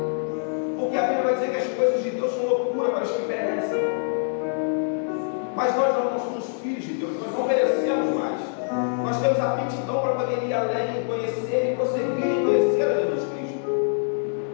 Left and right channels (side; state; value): right; silent; digital silence